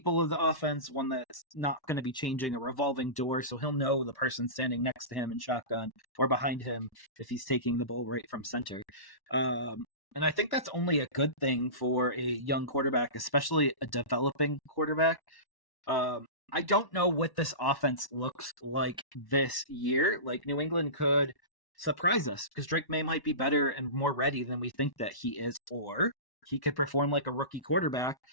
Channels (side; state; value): right; late; 1.1 ms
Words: of the offense, one that's not going to be changing, a revolving door, so he'll know the person standing next to him in shotgun or behind him if he's taking the ball right from center. And I think that's only a good thing for a young quarterback, especially a developing quarterback. I don't know what this offense looks like this year. Like, New England could surprise us because Drake May might be better and more ready than we think that he is, or he could perform like a rookie quarterback,